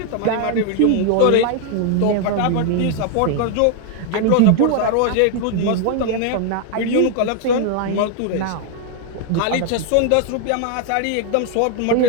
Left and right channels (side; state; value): both; different; correlation 0.00